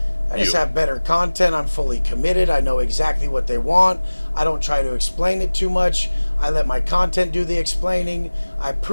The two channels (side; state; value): both; inverted; correlation -1.00